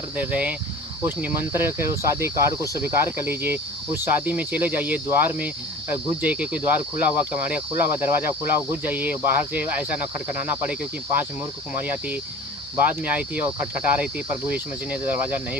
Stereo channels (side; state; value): both; normal; correlation 0.40